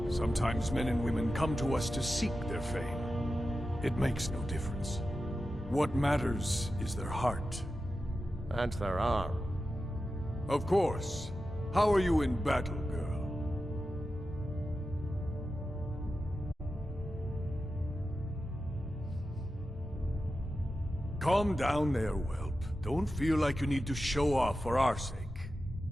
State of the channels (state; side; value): normal; both; correlation 0.92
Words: Sometimes men and women come to us to seek their fame. It makes no difference. What matters is their heart. And their arm. Of course. How are you in battle, girl? Calm down there, whelp. Don't feel like you need to show off for our sake.